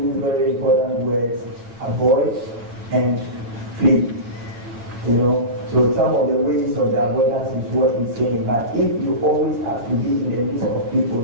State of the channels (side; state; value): left; late; 8.8 ms